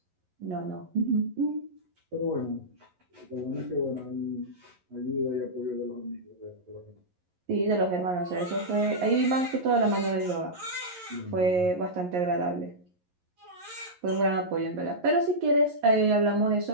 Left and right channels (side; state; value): left; late; 11 ms